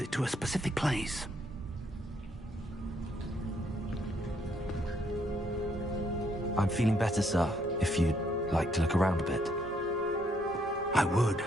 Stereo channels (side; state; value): both; normal; correlation 0.71